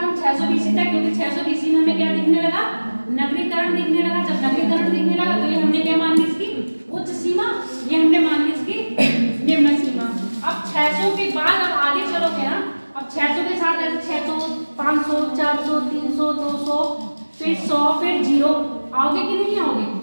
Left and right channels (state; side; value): inverted; both; correlation -1.00